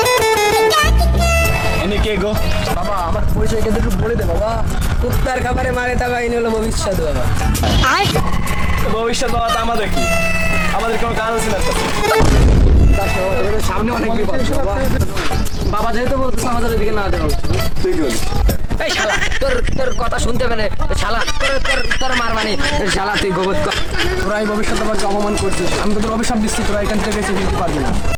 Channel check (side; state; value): both; identical; correlation 1.00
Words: এনে কে গো? বাবা আমার পরিচয় কিন্তু একটু বলে দে বাবা কুত্তার খাবারে মারে তা বাইনি হলো ভবিষ্যৎ বাবা ভবিষ্যৎ বাবা, তা আমাদের কি? আমাদের কোনো কাজ আছে না তো? সামনে অনেক বিপদ বাবা বাবা যেহেতু বলতেছে আমাদের ওদিকে না দেওয়া তুই কি বলিস? এই শালা তোর তোর কথা শুনতে পেলে শালা তোর তোর তোর মার মানে শালা তুই গোবর তোরা এই ভবিষ্যৎ আমাকে অপমান করছিস আমি তোদের অভিশাপ দিচ্ছি তোরা এখান থেকে বেঁচে ফিরতে পারবি না